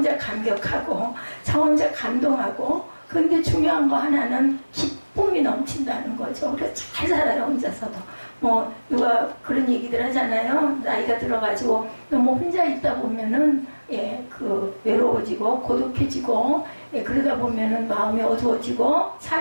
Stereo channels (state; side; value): inverted; both; correlation -1.00